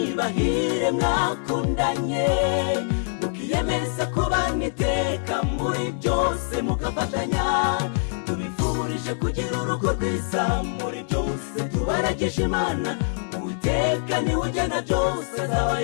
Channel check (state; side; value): silent; right; digital silence